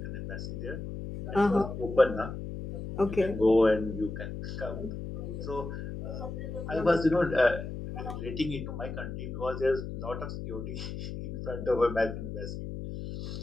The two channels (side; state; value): left; noise; hum, 7 dB below the sound